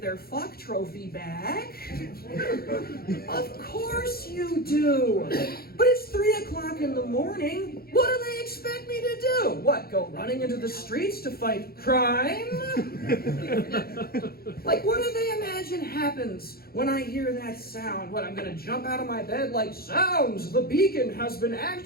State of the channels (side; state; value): right; late; 0.44 ms